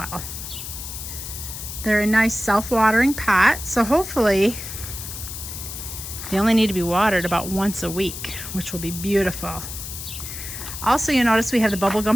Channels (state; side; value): noise; left; hiss, 9 dB below the sound